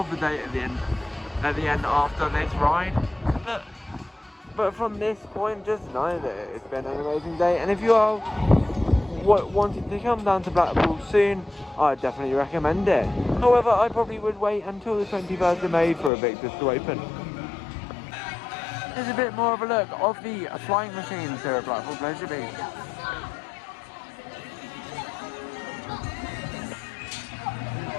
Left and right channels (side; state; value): right; drops out; at 16.1 s